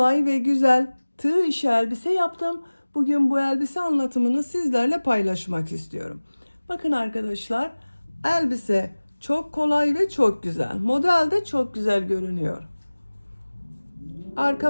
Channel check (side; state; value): both; inverted; correlation -1.00